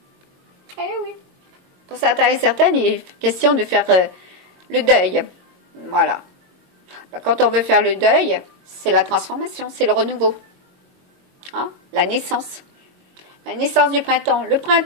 Eh oui. Pour certains et certaines, il est question de faire le deuil. Voilà. Quand on veut faire le deuil, c'est la transformation, c'est le renouveau. Hein? La naissance. La naissance du printemps. Le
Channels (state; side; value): late; left; 22 ms